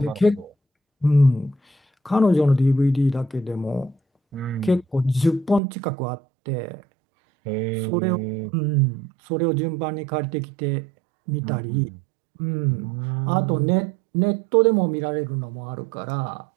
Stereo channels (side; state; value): left; drops out; at 5.6 s